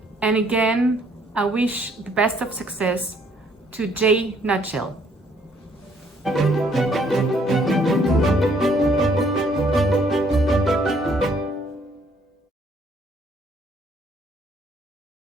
And again, I wish the best of success to J. Nutshell.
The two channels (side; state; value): both; normal; correlation 0.65